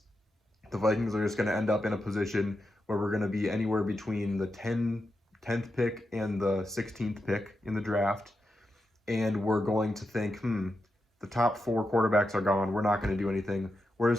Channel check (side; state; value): both; normal; correlation 0.87